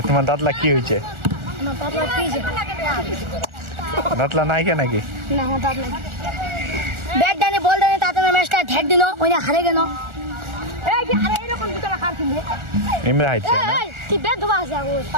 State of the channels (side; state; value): left; late; 1.4 ms